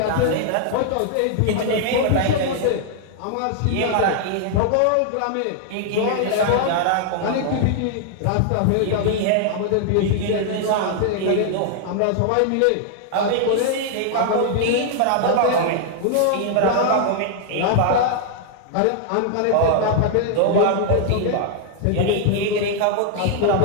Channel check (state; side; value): different; both; correlation 0.00